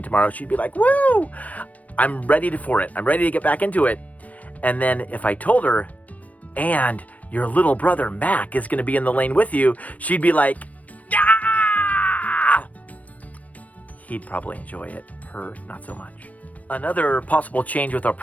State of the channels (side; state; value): right; late; 0.070 ms